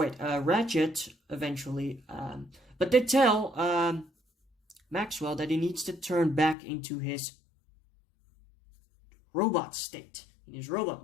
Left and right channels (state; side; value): drops out; right; at 6.6 s